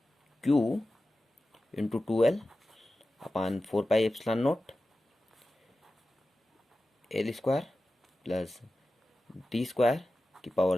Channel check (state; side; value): normal; both; correlation 0.94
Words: Q into 2L upon 4 pi epsilon naught L square plus D square की